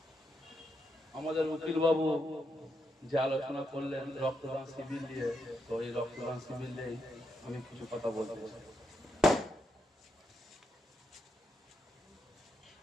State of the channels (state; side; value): normal; both; correlation 0.82